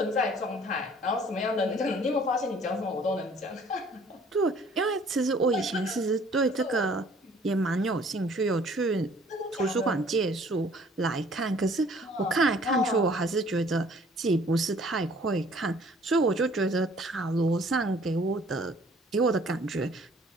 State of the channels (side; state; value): both; normal; correlation 0.56